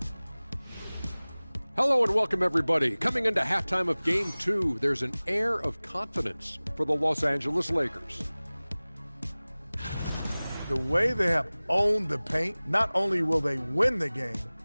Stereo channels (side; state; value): both; inverted; correlation -0.99